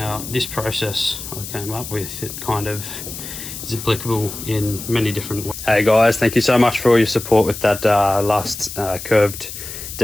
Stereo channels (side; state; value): left; noise; hiss, 10 dB below the sound